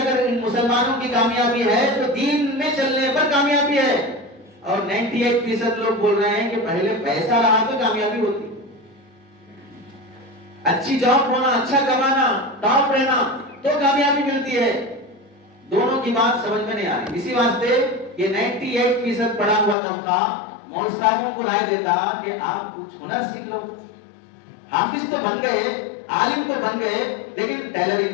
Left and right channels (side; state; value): right; drops out; at 19.8 s